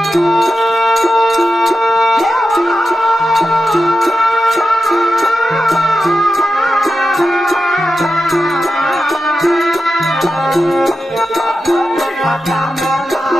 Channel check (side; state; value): both; normal; correlation 0.90